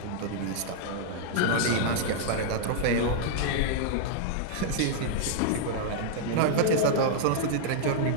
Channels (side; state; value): both; different; correlation -0.01